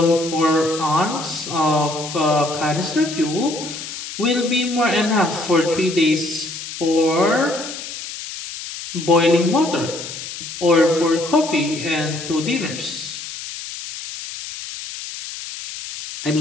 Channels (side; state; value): left; noise; hiss, 9 dB below the sound